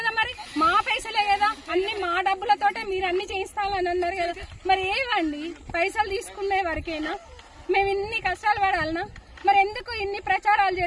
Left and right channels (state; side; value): identical; both; correlation 1.00